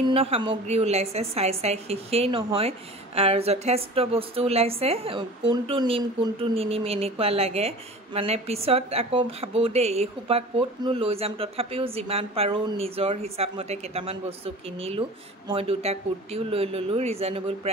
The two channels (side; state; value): both; normal; correlation 0.39